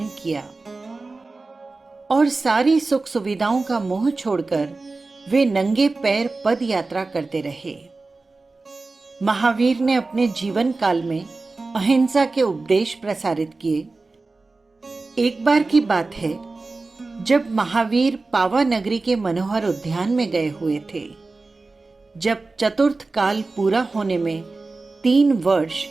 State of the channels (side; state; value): left; quieter; 3.6 dB